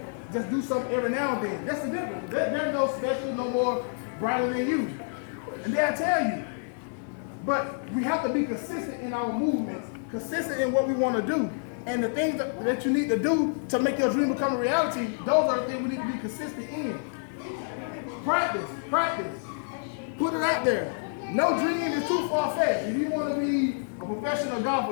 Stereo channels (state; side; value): silent; right; digital silence